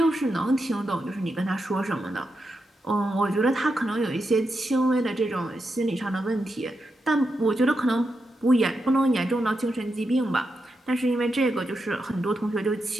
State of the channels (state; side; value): normal; both; correlation 0.86